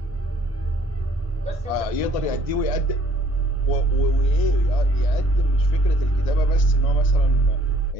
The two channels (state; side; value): late; right; 1.6 ms